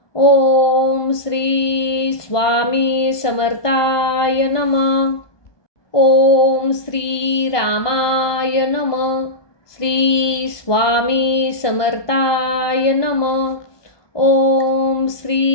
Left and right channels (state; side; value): late; right; 1.2 ms